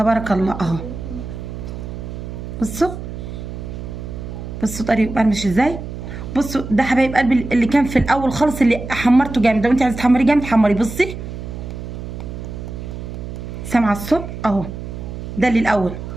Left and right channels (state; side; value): noise; right; hum, 9 dB below the sound